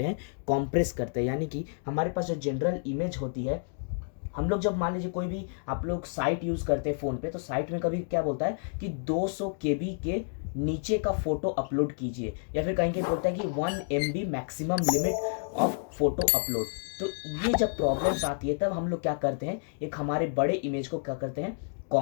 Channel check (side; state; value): right; silent; digital silence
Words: हैं, कॉम्प्रेस करते हैं। यानी कि हमारे पास जो जनरल इमेज होती है, हम लोग जब मान लीजिए कोई भी आप लोग साइट यूज़ करते हैं फ़ोन पे, तो साइट में कभी क्या बोलता है कि 200 केबी के नीचे का फोटो अपलोड कीजिए, या फिर कहीं कहीं बोलता है कि 1 MB maximum limit of photo upload. तो ये जब प्रॉब्लम्स आती है तब हम लोग क्या करते हैं, एक हमारे बड़े इमेज को क्या करते हैं,